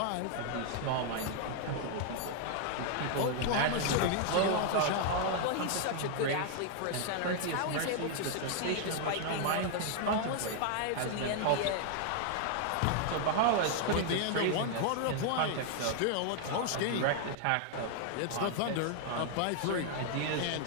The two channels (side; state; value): both; different; correlation 0.00